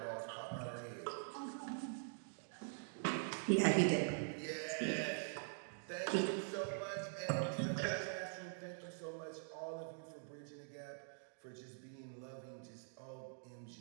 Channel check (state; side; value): silent; left; digital silence